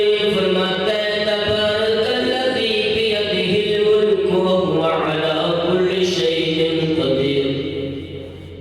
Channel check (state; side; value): identical; both; correlation 1.00